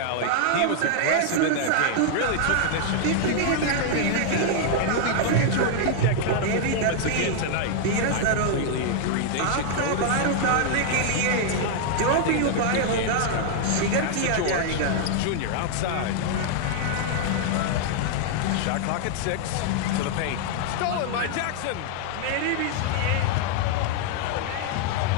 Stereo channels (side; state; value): both; different; correlation -0.01